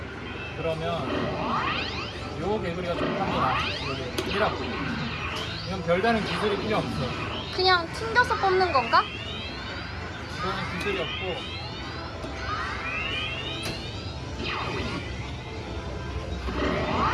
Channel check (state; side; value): identical; both; correlation 1.00